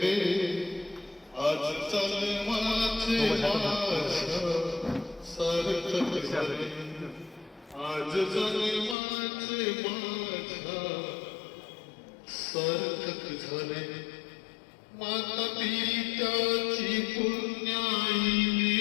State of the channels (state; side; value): drops out; right; at 9.0 s